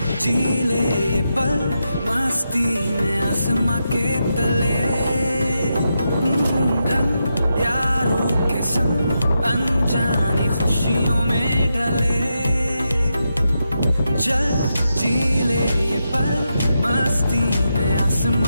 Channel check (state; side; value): inverted; both; correlation -0.86